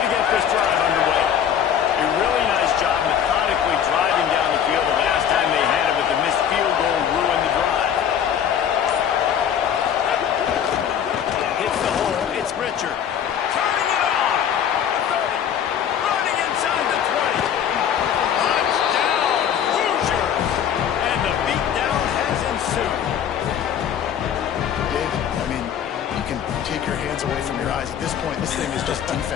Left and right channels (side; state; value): right; quieter; 8.9 dB